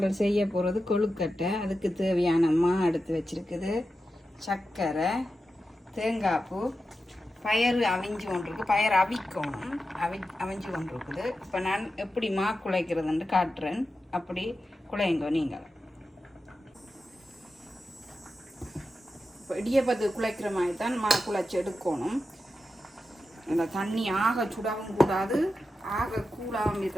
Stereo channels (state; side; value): normal; both; correlation 0.90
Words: செய்ய போகிறது கொழுக்கட்டை. அதுக்கு தேவையான மா எடுத்து வச்சிருக்குது, சர்க்கரை, தேங்காய் பூ, பயறு அவிஞ்சு கொண்டிருக்கு. பயறு அவிக்கணும், அவிஞ்சு கொண்டிருக்குது. இப்போ நான் எப்படி மா குழைக்கிறதுன்னு காட்டுறேன். அப்படி குழையுங்க நீங்கள். இப்போ இடியப்பத்து குழைக்கிற மாதிரி தான் மா குழைச்சி எடுக்கணும். இந்த தண்ணி ஆக சுடாவும் கூடாது, ஆக கூடாமல்